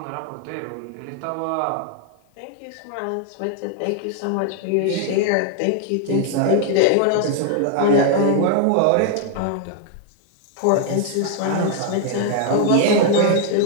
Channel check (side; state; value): both; different; correlation 0.00